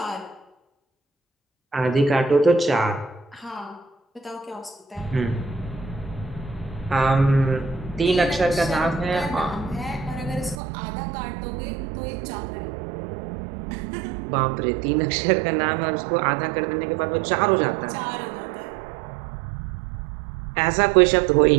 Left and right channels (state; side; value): drops out; left; at 10.6 s